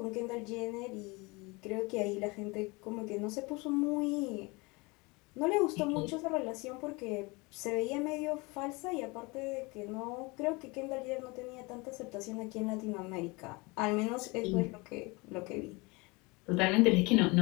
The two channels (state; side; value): quieter; right; 26.3 dB